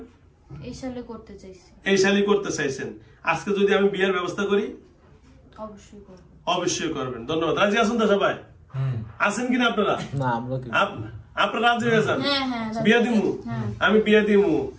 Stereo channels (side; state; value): both; identical; correlation 1.00